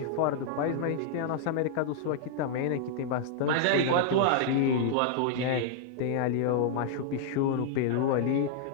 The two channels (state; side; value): different; both; correlation -0.01